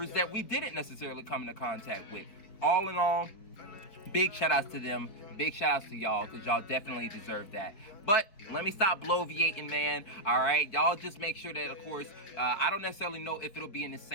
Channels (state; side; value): late; right; 4.4 ms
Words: that we didn't necessarily come into contact with. All in all, big shout outs to them. Big shout outs to y'all, because y'all definitely deserve that. But let me stop bloviating, man. All right, y'all just make sure that, of course, I don't necessarily know if it'll be in the